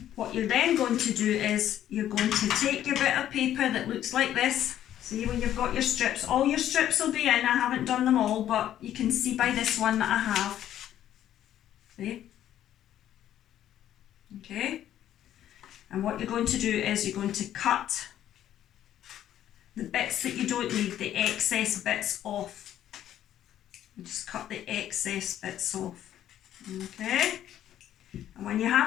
what you're then going to do is you're going to take your bit of paper that looks like this. See, when you've got your strips, all your strips will be in. I haven't done them all, but you can see by this one that I have. See? Okay. And what you're going to do is you're going to cut the bits that you don't need, the excess bits off. You just cut the excess bits off. Okay. And when you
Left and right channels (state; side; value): quieter; right; 11.5 dB